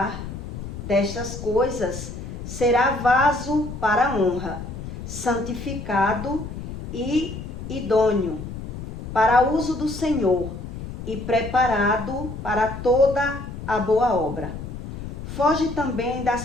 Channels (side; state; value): left; noise; rumble, 9 dB below the sound